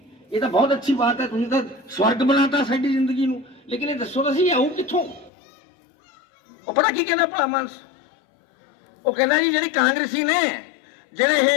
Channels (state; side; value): drops out; right; at 5.3 s